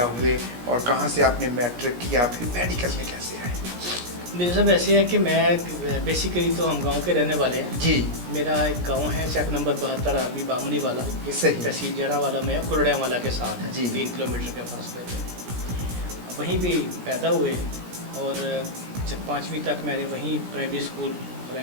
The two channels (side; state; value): left; late; 17 ms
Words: हुए और कहाँ से आपने मैट्रिक किया, फिर मेडिकल में कैसे आए? मेरे साहब ऐसे है कि मैं बेसिकली तो हम गांव के रहने वाले हैं जी। मेरा एक गांव है चक नंबर 72 आर्मी बामनी वाला, सही। तहसील जड़ा वाला में कुरड़िया वाला के साथ है जी। 3 किलोमीटर के फासले पे। वहीं भी पैदा हुए और जब 5वीं तक मैंने वहीं